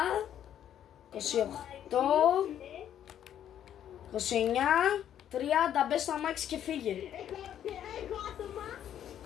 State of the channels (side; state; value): right; quieter; 10.3 dB